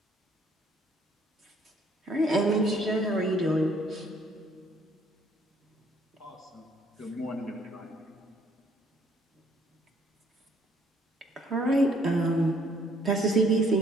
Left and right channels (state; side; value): normal; both; correlation 0.64